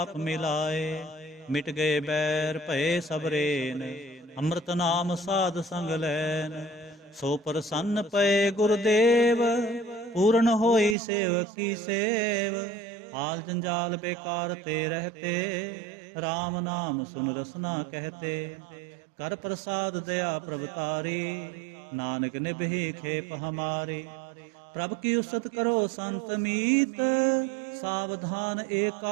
ਮਿਲਾਏ। ਮਿਟ ਗਏ ਬੈਰ ਭਏ ਸਭ ਰੇਨ, ਅੰਮ੍ਰਿਤ ਨਾਮ ਸਾਧ ਸੰਗ ਲੈਨ। ਸੋ ਪ੍ਰਸੰਨ ਪਏ ਗੁਰਦੇਵ, ਪੂਰਨ ਹੋਈ ਸੇਵਕ ਕੀ ਸੇਵ। ਹਾਲ ਜੰਜਾਲ ਬੇਕਾਰ ਤੇ ਰਹਤੇ, ਰਾਮ ਨਾਮ ਸੁਨ ਰਸਨਾ ਕਹਤੇ। ਕਰ ਪ੍ਰਸਾਦ ਦਇਆ ਪ੍ਰਭ ਤਾਰੀ, ਨਾਨਕ ਨਿਭੀ ਖੇਪ ਹਮਾਰੀ। ਪ੍ਰਭ ਕੀ ਉਸਤ ਕਰੋ ਸੰਤ ਮੀਤ, ਸਾਵਧਾਨ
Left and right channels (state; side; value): drops out; left; at 11.0 s